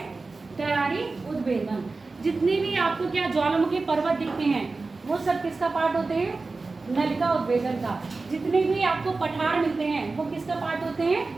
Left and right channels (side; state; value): left; quieter; 3.7 dB